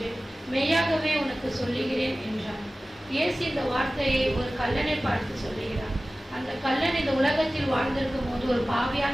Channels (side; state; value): both; normal; correlation 0.97